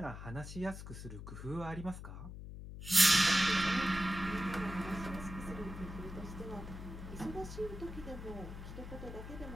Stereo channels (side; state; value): left; noise; hum, 10 dB below the sound